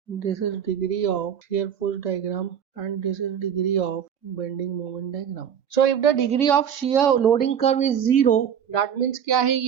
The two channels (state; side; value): quieter; left; 8.4 dB